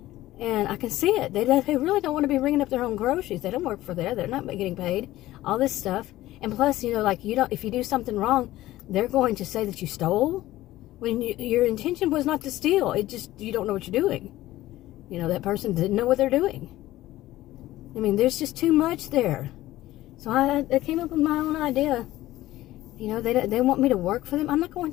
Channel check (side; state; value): right; quieter; 15.9 dB